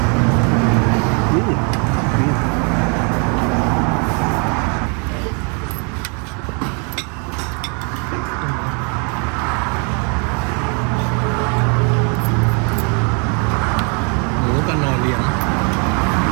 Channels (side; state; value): left; quieter; 36.1 dB